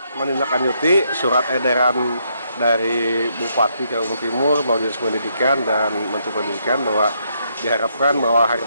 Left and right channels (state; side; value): inverted; both; correlation -0.75